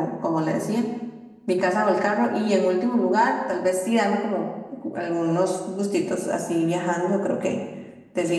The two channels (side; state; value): both; identical; correlation 1.00